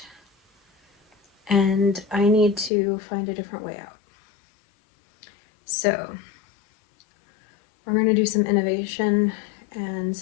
And I need to find a different way out. So we're going to do some innovation and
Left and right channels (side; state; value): right; drops out; at 2.7 s